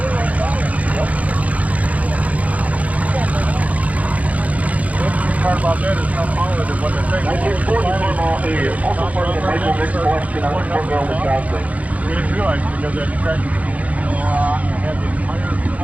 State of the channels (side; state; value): left; late; 0.069 ms